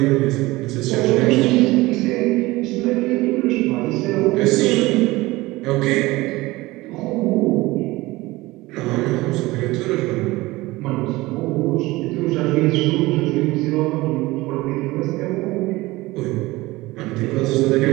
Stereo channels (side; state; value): left; quieter; 20.1 dB